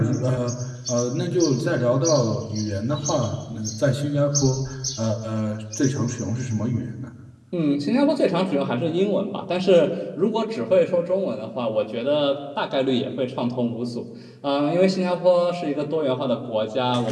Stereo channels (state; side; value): identical; both; correlation 1.00